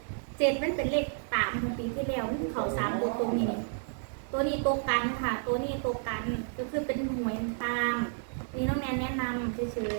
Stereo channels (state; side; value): silent; left; digital silence